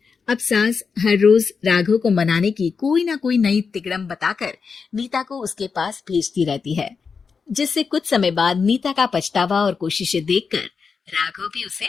अब सास हर रोज राघव को मनाने की कोई ना कोई नई तिकड़म बताकर नीता को उसके पास भेजती रहती है, जिससे कुछ समय बाद नीता का पछतावा और कोशिशें देखकर राघव भी उसे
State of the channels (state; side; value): quieter; right; 5.4 dB